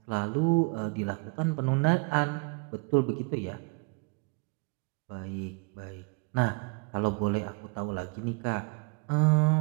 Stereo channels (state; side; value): quieter; left; 30.7 dB